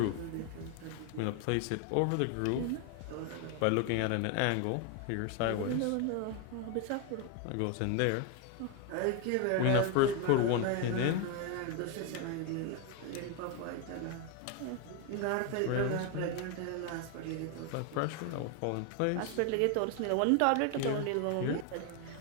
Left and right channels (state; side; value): different; both; correlation 0.01